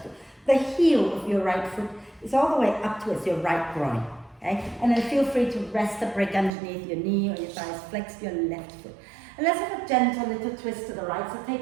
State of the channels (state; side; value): drops out; left; at 6.5 s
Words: the heel of your right foot is all the way up towards your right groin, okay? And then feel free to rest a brick underneath your knee or your thighs, flex your left foot. And let's have a gentle little twist to the right. So